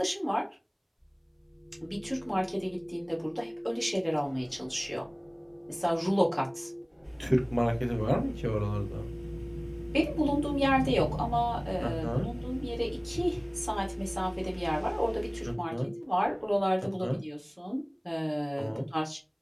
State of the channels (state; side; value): identical; both; correlation 1.00